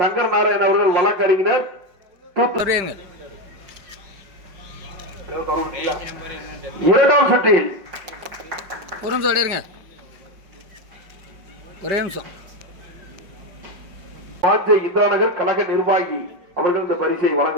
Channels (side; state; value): left; late; 5.1 ms